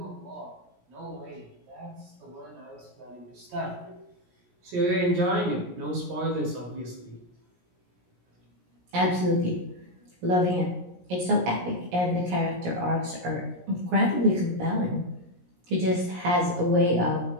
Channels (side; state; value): left; late; 17 ms